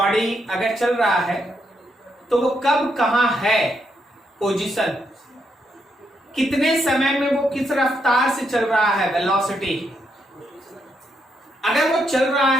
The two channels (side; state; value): both; normal; correlation 0.79